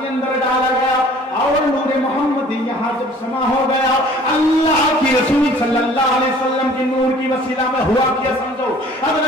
अंदर डाला गया और नूर मोहम्मदी यहाँ जब समा हो गया, अल्लाह की रसूल सल्लल्लाहु अलैहि वसल्लम की नूर की वसीला में हुआ क्या समझो,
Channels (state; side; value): normal; both; correlation 0.52